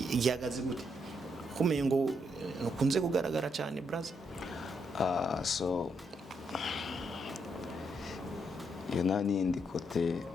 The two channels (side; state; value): both; normal; correlation 0.77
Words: gihagaze gute kumenya ngo ukunze kugaragara cyane brother so nani ndi kote